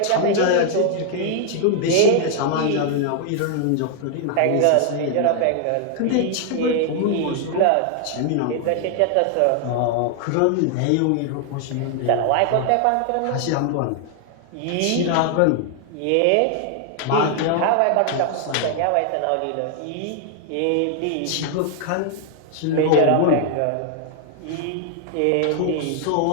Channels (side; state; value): both; different; correlation 0.00